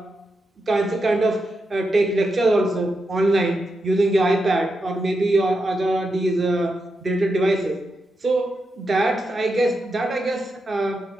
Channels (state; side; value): normal; both; correlation 0.86